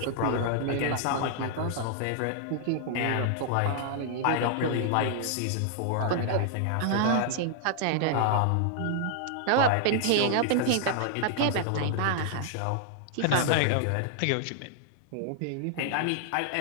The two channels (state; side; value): different; both; correlation -0.01